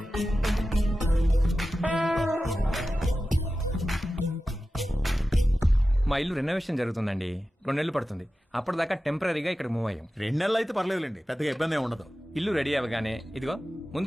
మా ఇల్లు రెనోవేషన్ జరుగుతుందండి, 2 నెలలు పడుతుంది. అప్పటిదాకా టెంపరీగా ఇక్కడ మూవ్ అయ్యాం. 2 నెలలు అయితే పర్లేదులేండి, పెద్దగా ఇబ్బంది ఏమి ఉండదు. ఇల్లు రెడీ అవ్వగానే ఇదిగో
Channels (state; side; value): normal; both; correlation 0.94